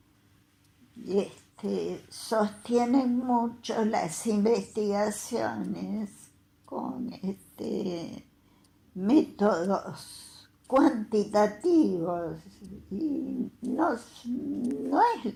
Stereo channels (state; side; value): identical; both; correlation 1.00